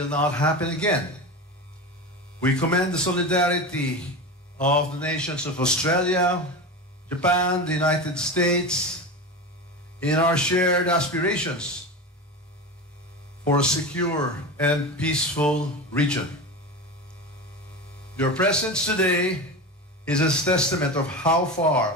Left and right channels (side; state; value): both; normal; correlation 0.25